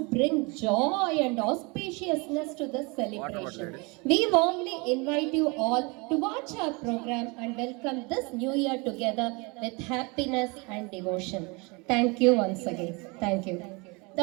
bring joy and auspiciousness to this celebration. We warmly invite you all to watch our program and welcome this new year together with happiness and devotion. Thank you once again. Thank you.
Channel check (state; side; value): quieter; left; 28.6 dB